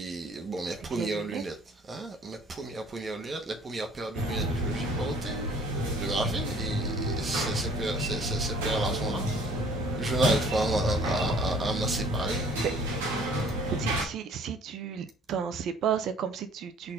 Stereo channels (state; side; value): normal; both; correlation 0.54